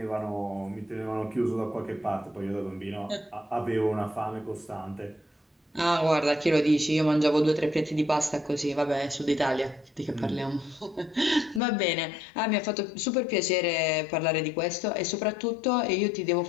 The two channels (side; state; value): right; drops out; at 11.6 s